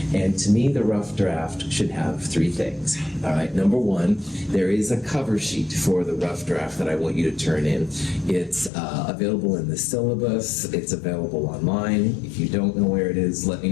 And to me, the rough draft should have 3 things. All right, number 1, there is a cover sheet for the rough draft that I want you to turn in. It's available in the syllabus. It's available online. If you don't know where it is, let me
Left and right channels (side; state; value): right; drops out; at 8.7 s